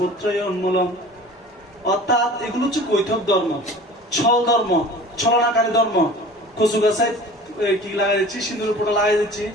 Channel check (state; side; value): normal; both; correlation 0.42